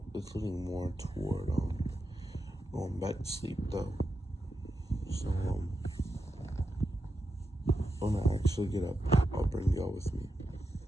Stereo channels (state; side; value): normal; both; correlation 0.88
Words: It's leaning more toward going back to sleep though. So when I actually get up, I'll bring y'all with me.